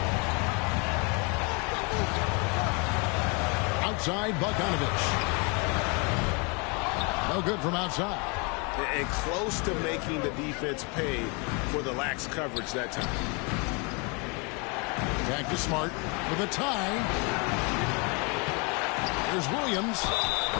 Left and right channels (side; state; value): right; quieter; 31.8 dB